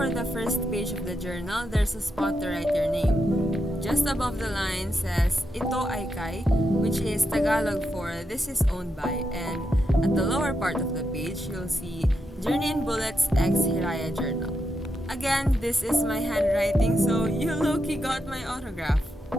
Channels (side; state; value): both; normal; correlation 0.84